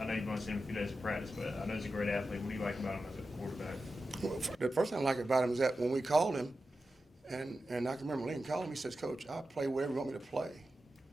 I know you've only seen him a few days of practice, but I know he's a great athlete. What do you like about him as a quarterback? Well, the first thing I like about him is that when we called him, and I can remember Lincoln called him, he says, "Coach, I'll play wherever you want me to play."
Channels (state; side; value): normal; both; correlation 0.91